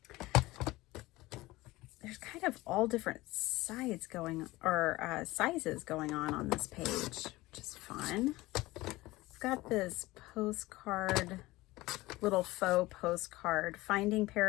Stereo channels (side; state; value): right; quieter; 19.5 dB